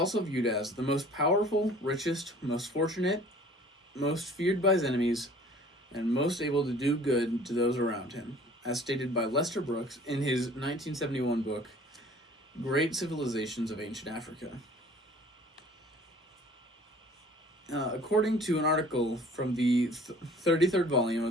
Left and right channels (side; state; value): both; normal; correlation 0.50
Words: viewed as the most powerful, richest, most fortunate, most feared by his enemies, and most able to do good to those around him, as stated by Lester Brooks in his 1971 book, Great Civilizations of Ancient Africa. According to an article from the 33rd volume